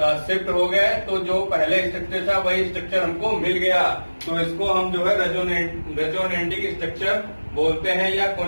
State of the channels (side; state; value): both; inverted; correlation -1.00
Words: शिफ्ट हो गए, तो जो पहले स्ट्रक्चर था वही स्ट्रक्चर हमको मिल गया। तो इसको हम जो है रेजोनेटिक स्ट्रक्चर बोलते हैं या